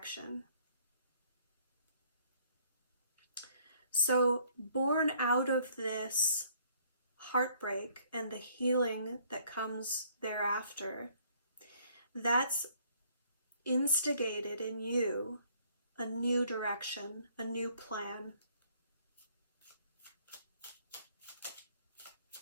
So, born out of this heartbreak and the healing that comes thereafter, that's instigated in you a new direction, a new plan.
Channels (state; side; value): inverted; both; correlation -0.61